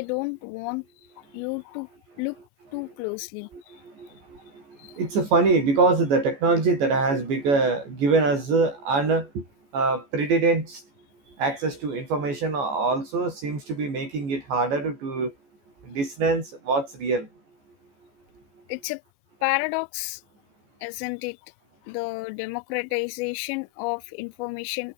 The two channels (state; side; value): late; left; 14 ms